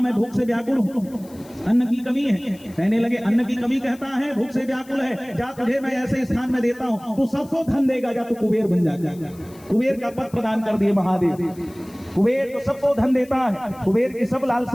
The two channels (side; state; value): left; noise; hiss, 25 dB below the sound